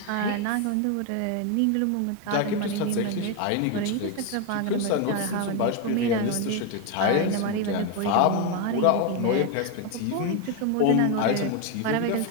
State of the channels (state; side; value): different; both; correlation 0.01